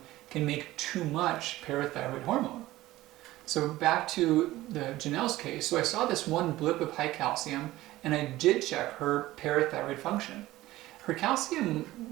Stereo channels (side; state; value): left; quieter; 16.7 dB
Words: can make too much parathyroid hormone. So back to the Janelle's case, so I saw this one blip of high calcium and I did check her parathyroid function. Her